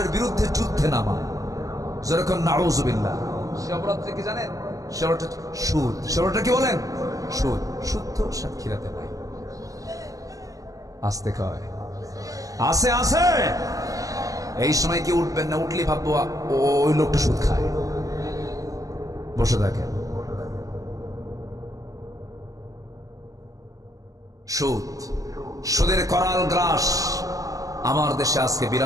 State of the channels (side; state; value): left; late; 0.17 ms